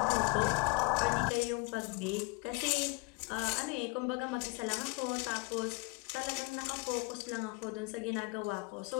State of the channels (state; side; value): quieter; right; 26.6 dB